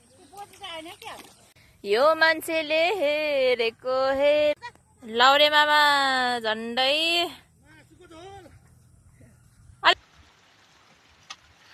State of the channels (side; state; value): both; identical; correlation 1.00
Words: यो मान्छेले हेरेको लाउरे मामा झन्डै